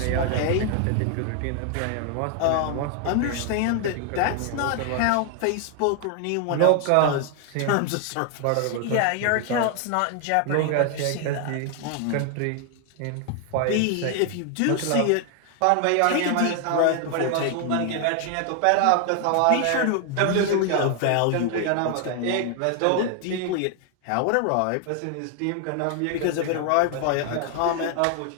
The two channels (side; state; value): both; different; correlation 0.00